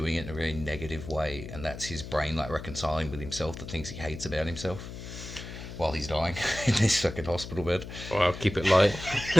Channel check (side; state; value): left; noise; hum, 11 dB below the sound